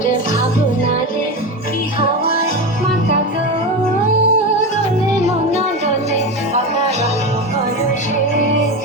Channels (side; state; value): both; normal; correlation 0.20